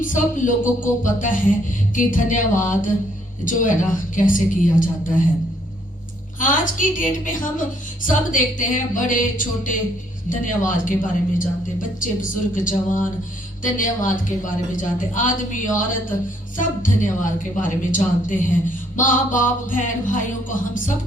सब लोगों को पता है कि धन्यवाद जो है ना कैसे किया जाता है। आज की डेट में हम सब देखते हैं, बड़े छोटे धन्यवाद के बारे में जानते हैं, बच्चे बुजुर्ग जवान धन्यवाद के बारे में जानते हैं, आदमी औरत सब धन्यवाद के बारे में जानते हैं। माँ बाप बहन भाइयों को हम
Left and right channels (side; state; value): both; normal; correlation 0.67